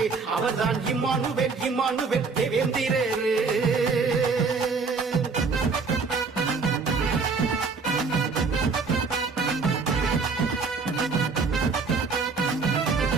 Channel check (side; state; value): left; quieter; 4.6 dB